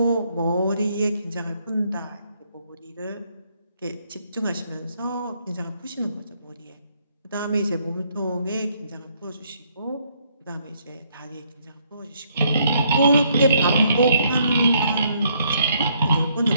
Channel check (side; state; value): both; inverted; correlation -0.70